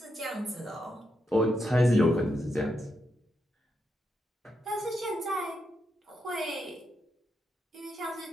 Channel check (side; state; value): both; normal; correlation 0.83